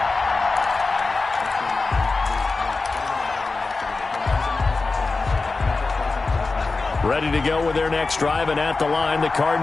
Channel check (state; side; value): quieter; right; 3.8 dB